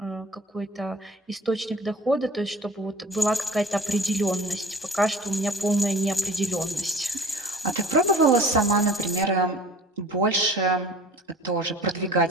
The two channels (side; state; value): both; normal; correlation 0.44